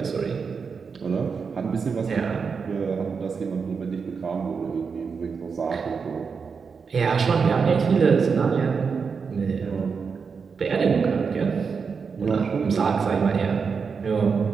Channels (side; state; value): left; quieter; 5.6 dB